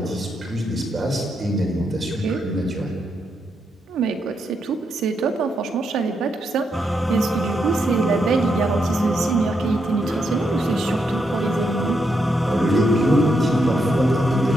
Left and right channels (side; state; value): both; normal; correlation 0.81